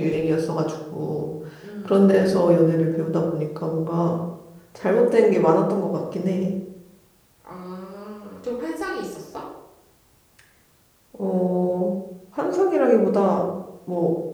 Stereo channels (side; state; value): both; identical; correlation 1.00